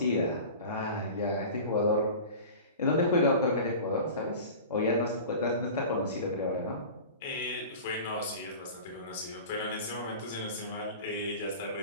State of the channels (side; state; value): both; inverted; correlation -0.36